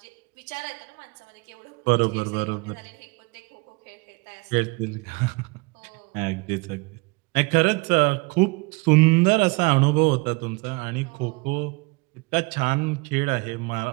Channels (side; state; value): left; quieter; 27.4 dB